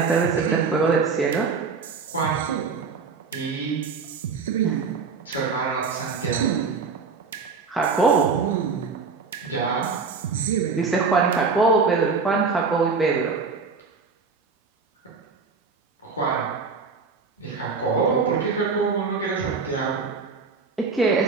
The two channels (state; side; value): quieter; left; 4.9 dB